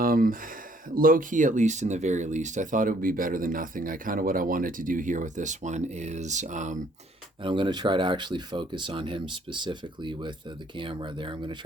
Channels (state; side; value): normal; both; correlation 0.63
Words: low key, at least in the very least, I thought it would be better than nothing. I kind of what I wanted to do here with this one is, and I'm going to try to actually focus on him specifically with the camera there. I'm going to